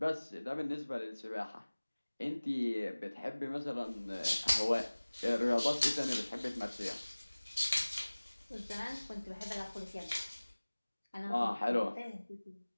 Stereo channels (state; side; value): inverted; both; correlation -1.00